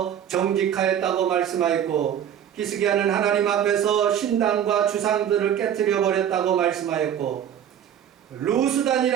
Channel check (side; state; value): left; quieter; 9.6 dB